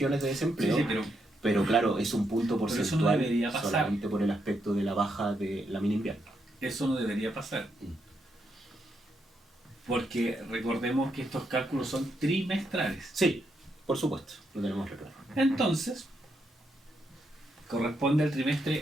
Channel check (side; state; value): both; normal; correlation 0.80